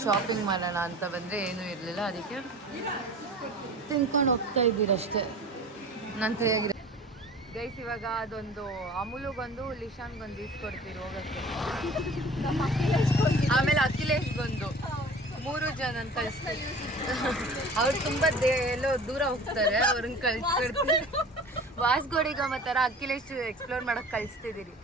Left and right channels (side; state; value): both; normal; correlation 0.42